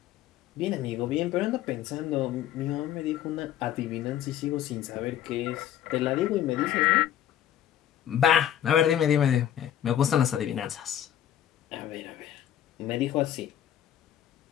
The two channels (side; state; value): right; quieter; 10.8 dB